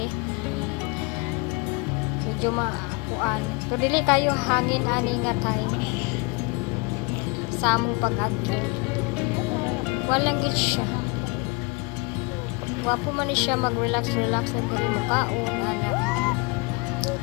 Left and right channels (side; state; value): right; quieter; 29.0 dB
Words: Medyo kuan. Pero dili kayo hangin ani nga time. Sa among pag-adto. Walang gid siya. Wapo man ni siya mag-relax na diri mo kaon anak